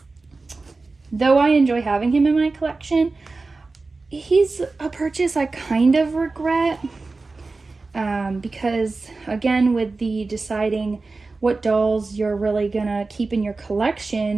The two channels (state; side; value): quieter; left; 3.7 dB